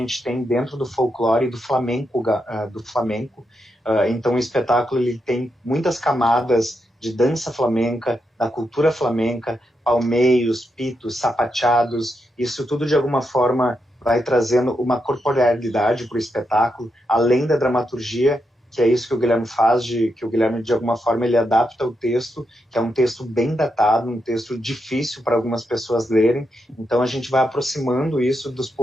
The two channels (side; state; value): both; normal; correlation 0.84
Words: tem dentro do folclore e do flamenco. Então o espetáculo ele tem muitas camadas de dança flamenca, da cultura flamenca, palmeios, pitos, sapateados. Isso tudo de alguma forma vai trazendo uma corporealidade para o espetáculo, além da dramaturgia, que é isso que o Guilherme faz, que o Guilherme, de alguma forma, ele adapta o texto, que é um texto bem datado, um texto difícil para algumas pessoas lerem. Então, a gente vai aproximando isso dos